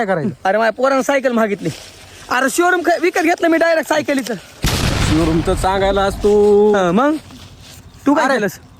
करायचं. अरे माझ्या पोरानं सायकल मागितली. अरे शोरूम विकत घेतलं मी डायरेक्ट सायकलीचं. शोरूमचं सांगायला असतो. मग तू काय केलंस?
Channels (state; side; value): identical; both; correlation 1.00